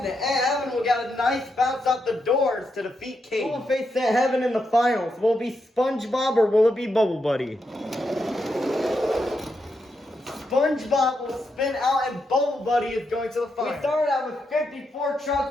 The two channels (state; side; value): normal; both; correlation 0.83